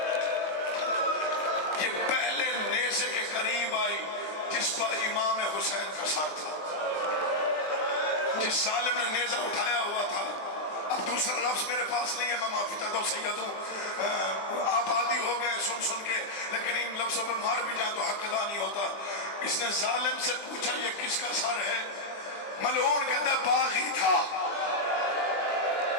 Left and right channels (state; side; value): late; right; 20 ms